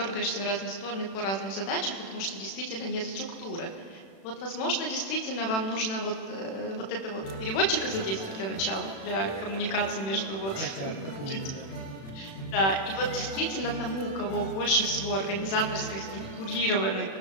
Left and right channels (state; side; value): late; right; 36 ms